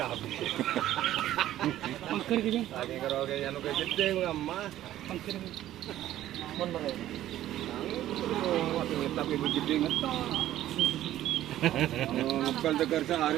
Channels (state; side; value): quieter; left; 13.3 dB